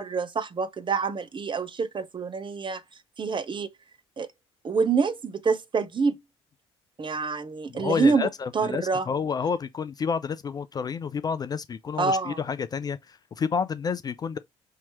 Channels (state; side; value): normal; both; correlation 0.60